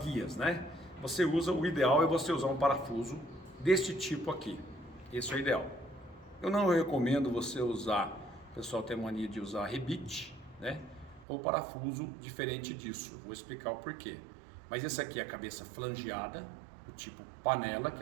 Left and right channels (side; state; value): left; drops out; at 11.2 s